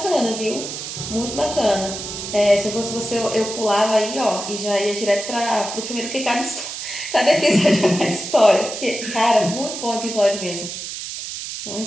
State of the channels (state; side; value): noise; right; hiss, 7 dB below the sound